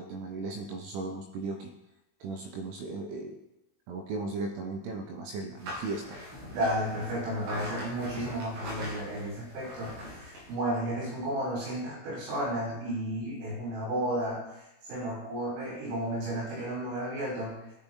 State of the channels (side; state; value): left; late; 21 ms